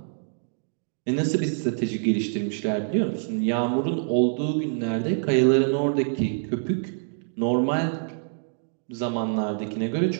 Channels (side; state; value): left; silent; digital silence